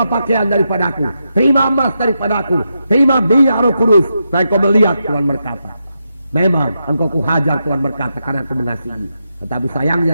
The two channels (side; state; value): both; inverted; correlation -0.85